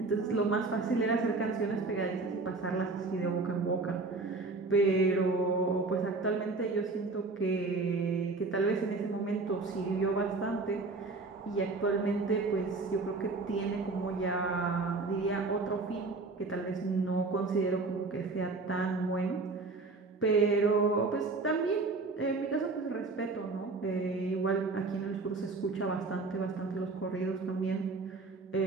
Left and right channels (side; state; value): left; quieter; 3.7 dB